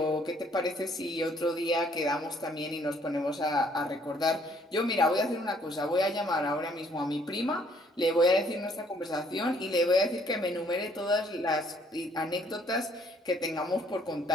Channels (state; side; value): normal; both; correlation 0.64